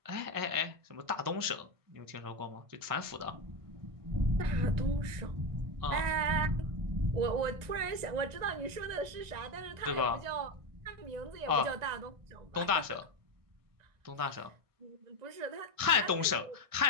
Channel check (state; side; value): late; left; 1.6 ms